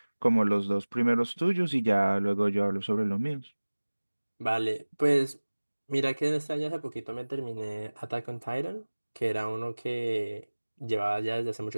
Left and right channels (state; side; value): inverted; both; correlation -1.00